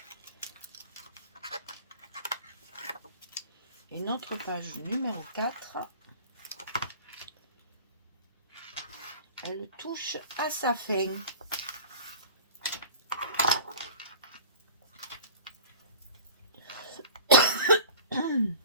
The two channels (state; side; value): inverted; both; correlation -0.40